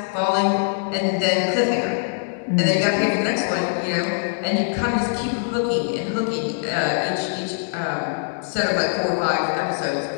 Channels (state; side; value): silent; right; digital silence